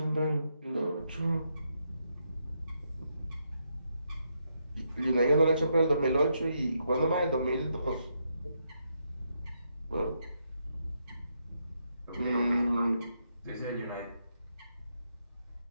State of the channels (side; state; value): both; inverted; correlation -0.79